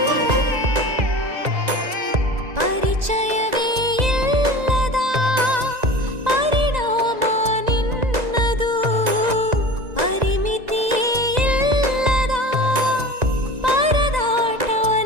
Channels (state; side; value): late; left; 1.9 ms